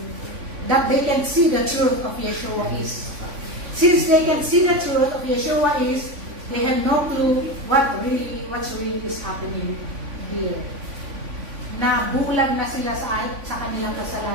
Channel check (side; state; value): left; late; 3.5 ms